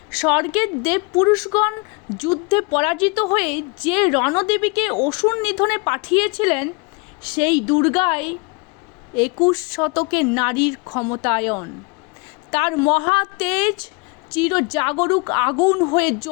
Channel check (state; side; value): quieter; right; 29.6 dB